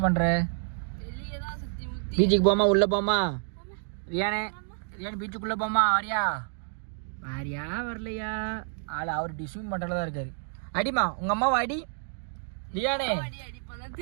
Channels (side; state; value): left; silent; 59 dB below the other